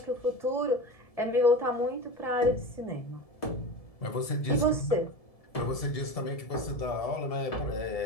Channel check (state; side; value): late; right; 1.7 ms